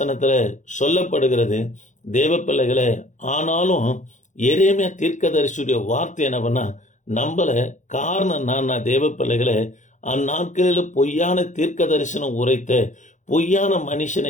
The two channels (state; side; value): late; right; 0.36 ms